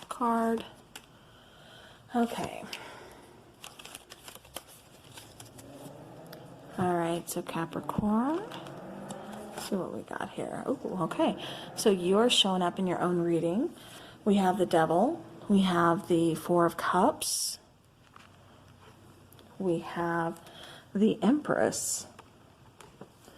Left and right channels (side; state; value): both; identical; correlation 1.00